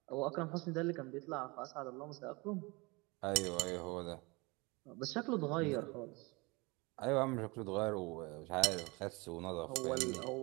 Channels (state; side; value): quieter; left; 26.3 dB